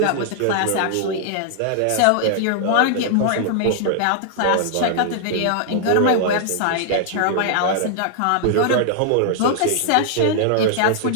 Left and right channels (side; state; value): both; different; correlation -0.01